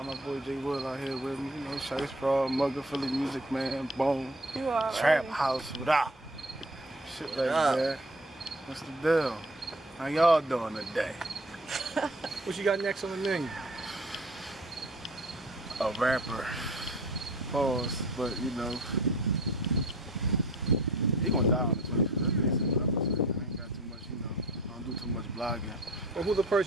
my boy J Will out here with me, Shice Straw, Mugga, Philly Music Man, Bone, You all Trap right. House, without shit like that. What's the deal? How y'all doing today? What you got next on the menu? A rapper. Pause, but he gonna die on the 25th. That's basically what I'm saying. I ain't got too much, I don't do too much blogging. Well, who's the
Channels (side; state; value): both; normal; correlation 0.47